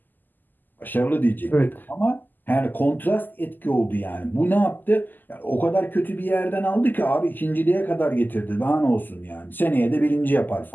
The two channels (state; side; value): late; right; 0.088 ms